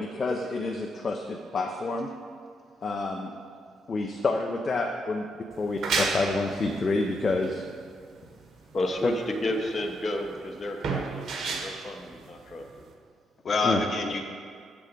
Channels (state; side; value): normal; both; correlation 0.80